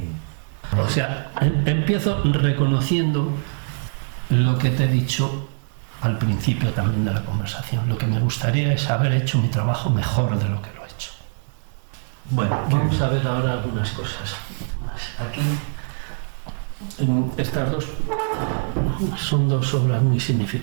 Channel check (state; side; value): silent; left; digital silence